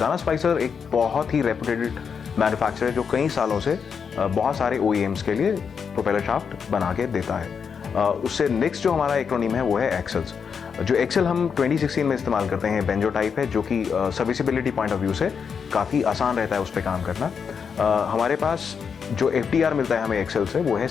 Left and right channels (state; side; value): quieter; right; 6.4 dB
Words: स्पाइसर एक बहुत ही रेपुटेड मैन्युफैक्चरर है जो कई सालों से बहुत सारे OEMs के लिए प्रोपेलर शाफ्ट बना के देता है। उससे नेक्स्ट जो हमारा एक्रोनिम है वो है एक्सेल्स। जो एक्सेल हम 2016 में इस्तेमाल करते हैं बेंजो टाइप है जो कि सर्विसिबिलिटी पॉइंट ऑफ व्यू से काफ़ी आसान रहता है उस पर काम करना। हमारे पास जो FTR मिलता है हमें एक्सेल से वो है